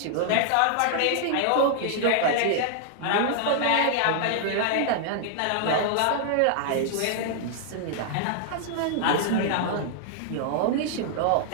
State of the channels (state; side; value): different; both; correlation -0.01